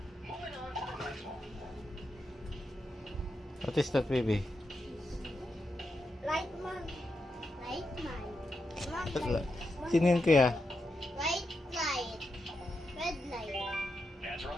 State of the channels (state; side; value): normal; both; correlation 0.86